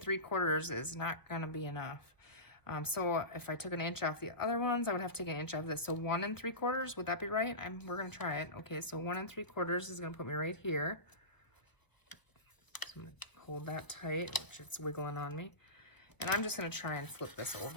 is not gonna be enough. So if I took an inch off the other ones, I would have to take an inch off this. So 1 3/4, would that be right? We're gonna try it. Okay, so 1 3/4 is gonna put me right here. So I'm gonna hold that tight, which it's wiggling on me. And I'm just gonna try and flip this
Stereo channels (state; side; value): late; right; 1.0 ms